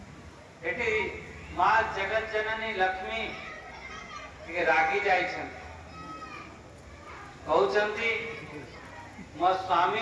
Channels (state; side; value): identical; both; correlation 1.00